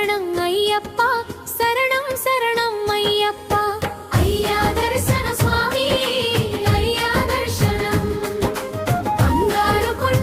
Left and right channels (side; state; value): both; identical; correlation 1.00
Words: అయ్యప్ప శరణం శరణం అయ్యప్ప అయ్యా దర్శన స్వామి అయ్యా దర్శనం బంగారు